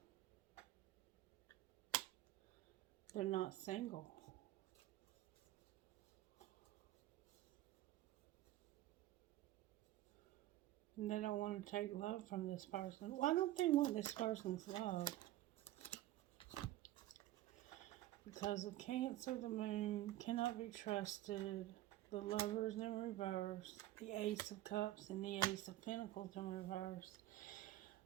they're not single. And they don't want to take love from this person. Why don't they want this person's love? Because of Cancer, the Moon, cannot be trusted. The Lovers in reverse. The Ace of Cups and the Ace of Pentacles in reverse.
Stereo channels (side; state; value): left; quieter; 15.0 dB